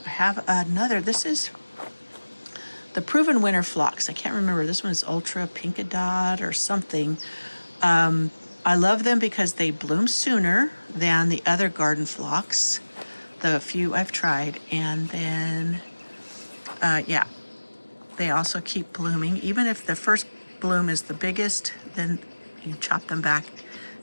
I have another. This is the Proven Winter Phlox. I can't remember. This one is Ultra Pinkadot or something. I love them because they bloom sooner than the other garden phlox, the few I've tried. And then Yeah, they also keep blooming. Even if the first bloom is the biggest, then you chop them back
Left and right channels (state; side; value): inverted; both; correlation -1.00